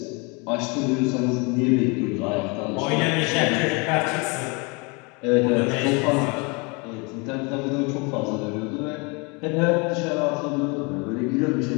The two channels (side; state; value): right; quieter; 30.1 dB